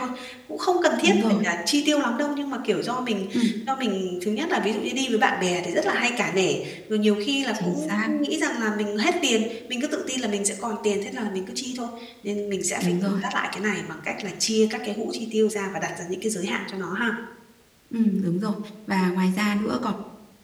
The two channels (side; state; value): both; identical; correlation 1.00